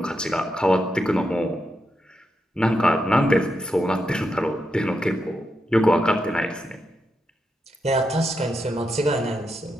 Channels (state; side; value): normal; both; correlation 0.84